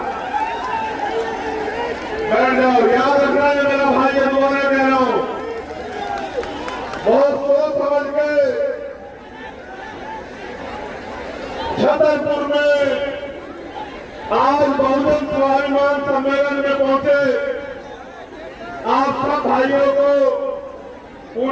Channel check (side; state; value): both; identical; correlation 1.00